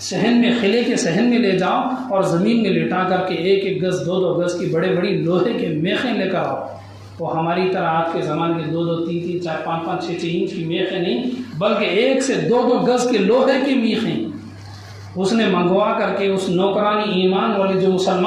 صحن میں، قلعے کے صحن میں لے جاؤ اور زمین میں لٹا کر کے 1-1 گز 2-2 گز کی بڑے لوہے کے میخیں لے کر آؤ۔ وہ ہماری طرح آج کے زمانے کے 2-2 3-3 4 5 6 انچ کی میخیں نہیں، بلکہ 1 سے 2-2 گز کے لوہے کی میخیں اس نے منگوا کر کے اس نوکرانی ایمان والی جو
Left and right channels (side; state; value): both; identical; correlation 1.00